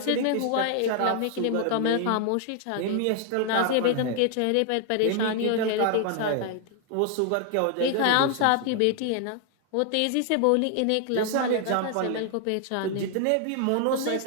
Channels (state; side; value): different; both; correlation 0.00